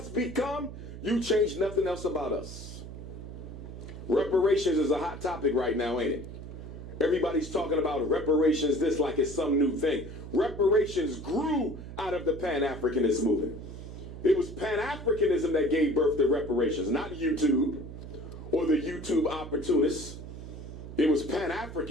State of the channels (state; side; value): noise; right; hum, 11 dB below the sound